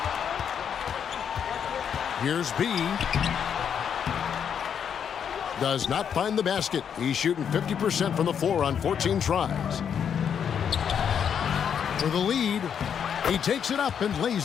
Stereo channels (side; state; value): right; quieter; 7.9 dB